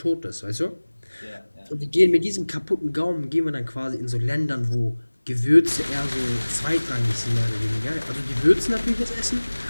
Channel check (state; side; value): inverted; both; correlation -1.00